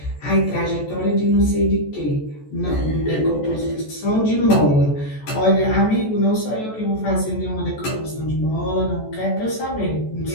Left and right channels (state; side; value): late; right; 14 ms